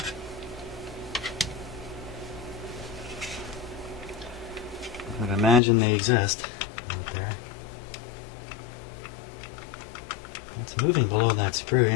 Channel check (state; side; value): drops out; right; at 5.6 s